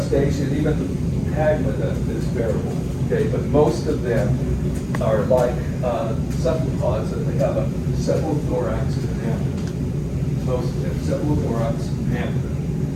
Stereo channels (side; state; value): both; identical; correlation 1.00